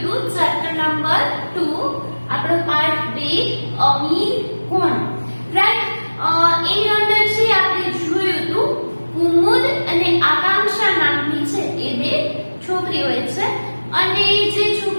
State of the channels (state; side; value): inverted; both; correlation -1.00